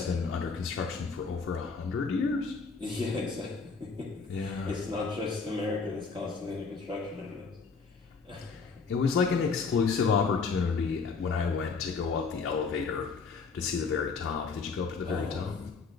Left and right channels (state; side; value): quieter; right; 4.8 dB